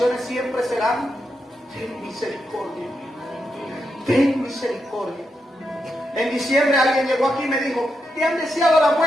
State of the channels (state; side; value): normal; both; correlation 0.84